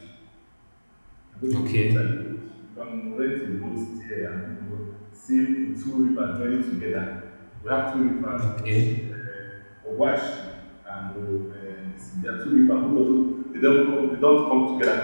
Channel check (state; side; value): inverted; both; correlation -1.00